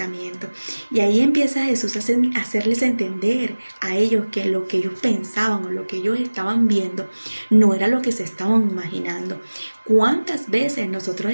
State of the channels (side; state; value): both; inverted; correlation -1.00